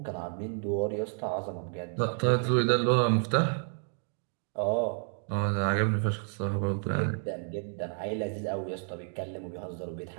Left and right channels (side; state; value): left; silent; 57 dB below the other